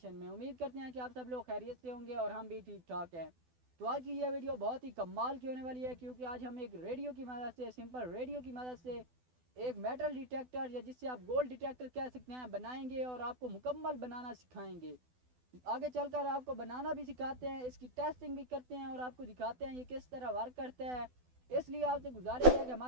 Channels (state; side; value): late; left; 12 ms